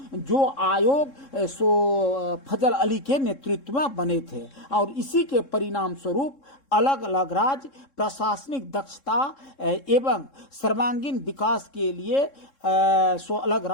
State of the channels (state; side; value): late; right; 3.7 ms